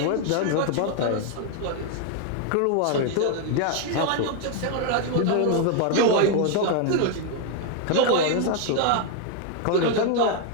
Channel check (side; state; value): both; different; correlation 0.00